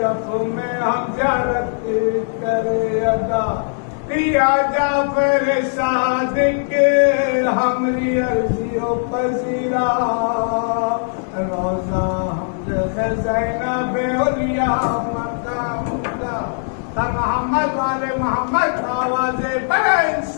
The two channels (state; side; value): silent; right; digital silence